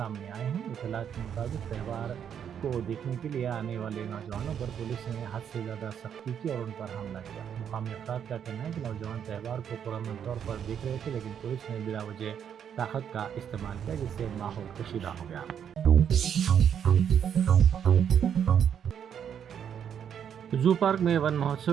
آئے ہیں۔ اطلاعات کے مطابق تہوار کو دیکھنے کے لیے آنے والے نوجوانوں پر پولیس نے حد سے زیادہ سختی کی اور ان پر حملہ کیا۔ مقامی افراد کا کہنا ہے کہ نوجوان تہوار کو پرامن طور پر دیکھ رہے تھے، لیکن پولیس نے بلا وجہ طاقت کا استعمال کیا جس سے ماحول کشیدہ ہو گیا۔ زو پارک میں ون مہوتسو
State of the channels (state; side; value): quieter; left; 8.5 dB